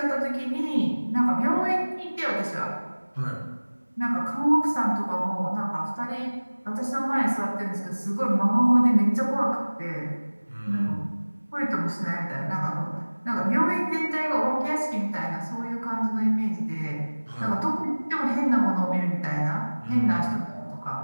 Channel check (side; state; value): both; inverted; correlation -1.00